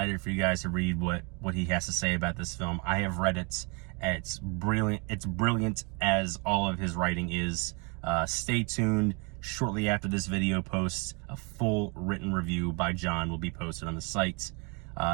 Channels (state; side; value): quieter; left; 32.5 dB